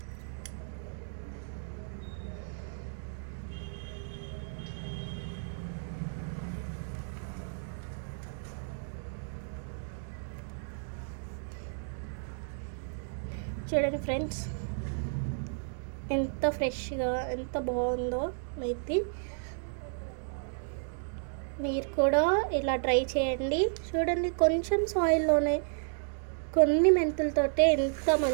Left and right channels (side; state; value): left; silent; digital silence